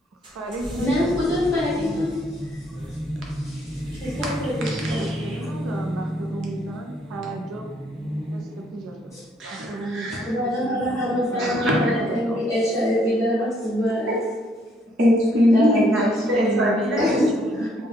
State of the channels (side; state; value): both; normal; correlation 0.68